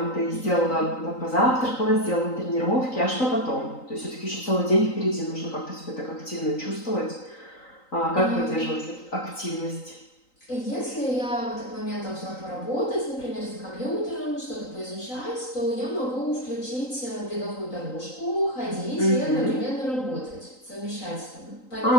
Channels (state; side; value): late; right; 3.9 ms